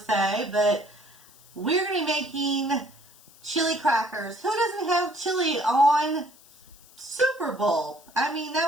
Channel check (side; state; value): left; noise; hiss, 25 dB below the sound